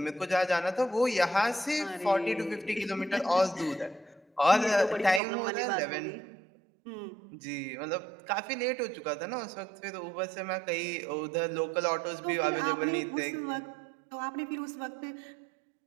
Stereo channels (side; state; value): left; drops out; at 5.2 s